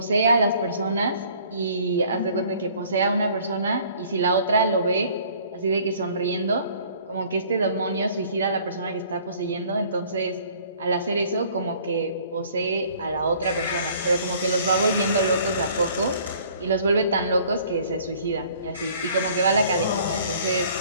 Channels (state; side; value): inverted; both; correlation -0.55